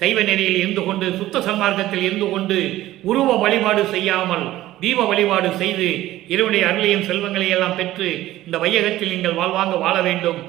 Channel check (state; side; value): quieter; left; 15.2 dB